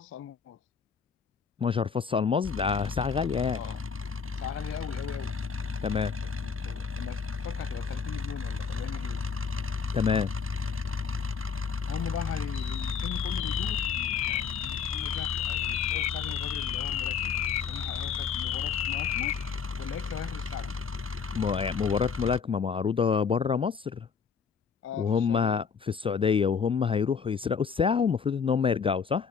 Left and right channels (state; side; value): quieter; right; 6.1 dB